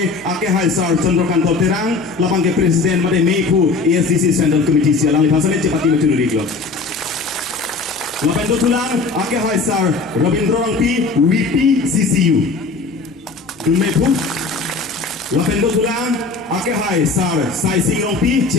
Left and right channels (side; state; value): right; quieter; 4.0 dB